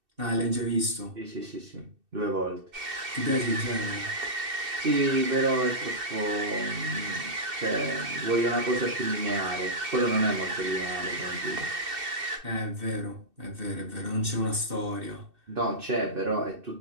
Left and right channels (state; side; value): late; left; 2.7 ms